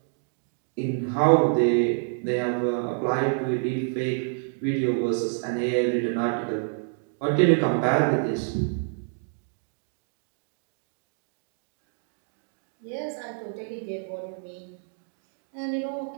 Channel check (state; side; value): silent; left; digital silence